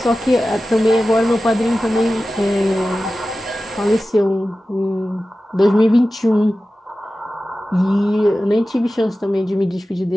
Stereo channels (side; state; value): both; normal; correlation 0.95